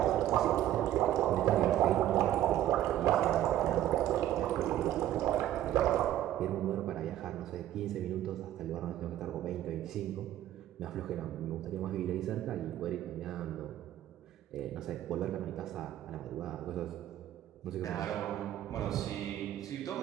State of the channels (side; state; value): left; quieter; 12.7 dB